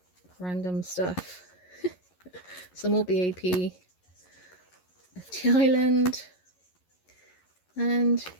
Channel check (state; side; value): late; right; 11 ms